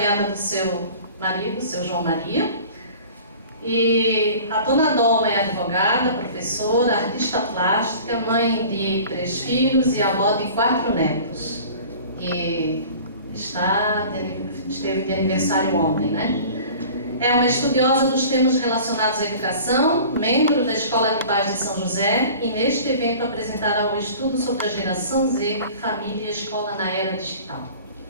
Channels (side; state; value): both; inverted; correlation -0.43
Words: do seu marido, seu João Maria. E a Dona Dalma é advogada, professora, artista plástica, mãe de 3 filhos e avó de 4 netos. E esteve de aniversário ontem, né? É uma estudiosa dos temas relacionados à educação, membro da Escola de Pais de São José e neste evento apresentará o estudo sobre a Geração Z, Família e Escola na Era Digital.